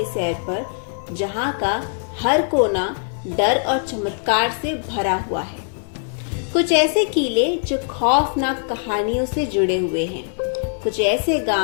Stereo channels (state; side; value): silent; right; digital silence